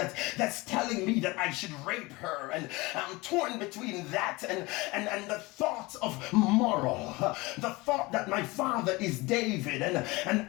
telling me that I should rape her, and I'm torn between that and the thought of moral, the thought that my father is David,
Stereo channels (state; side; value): quieter; right; 23.0 dB